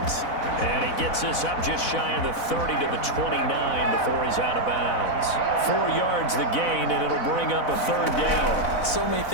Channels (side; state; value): right; late; 4.0 ms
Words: And he gets us up just shy of the 30 to the 29 before he's out of bounds. 4 yards the gain, and it'll bring up a third down. So many